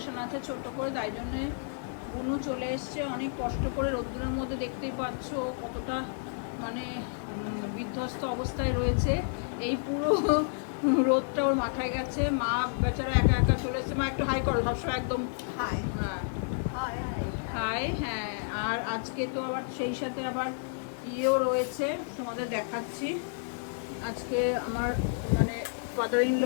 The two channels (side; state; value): right; silent; digital silence